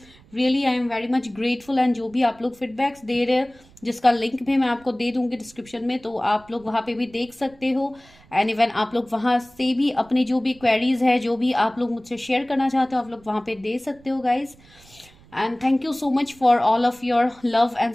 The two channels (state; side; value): noise; right; rumble, 26 dB below the sound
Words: really I am very much grateful. And जो भी आप लोग फीडबैक्स दे रहे हैं, जिसका लिंक भी मैं आपको दे दूंगी डिस्क्रिप्शन में, तो आप लोग वहाँ पे भी देख सकते हो। एंड इवन आप लोग वहाँ से भी अपनी जो भी क्वेरीज है, जो भी आप लोग मुझसे शेयर करना चाहते हो, आप लोग वहाँ पे दे सकते हो guys. And thank you so much for all of your love and